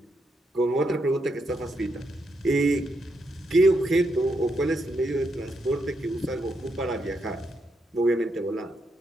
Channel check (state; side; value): normal; both; correlation 0.80